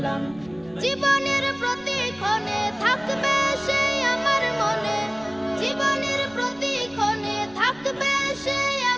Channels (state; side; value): noise; right; rumble, 25 dB below the sound